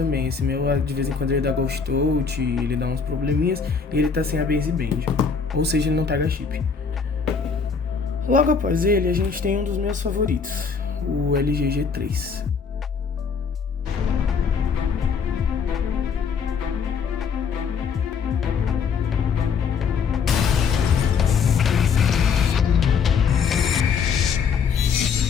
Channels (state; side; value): quieter; right; 5.8 dB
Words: Esse meu, de vez em quando, ele dá ghost out, ele dá uns probleminhas, e ele tá sem a baseband. Ou seja, ele não pega chip. Logo após ele, a gente tem um dos meus favoritos, o LG G3.